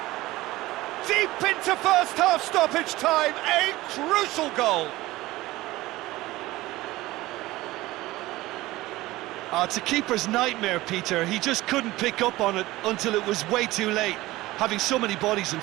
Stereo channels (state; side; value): quieter; left; 18.2 dB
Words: Deep into first half stoppage time, a crucial goal. Oh, it's a keeper's nightmare, Peter. He just couldn't pick up on it until it was way too late, having so many bodies in